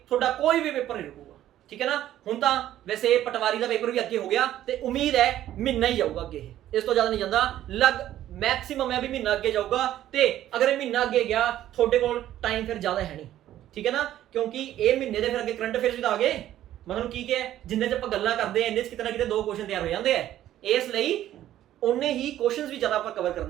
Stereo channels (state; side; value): quieter; left; 12.6 dB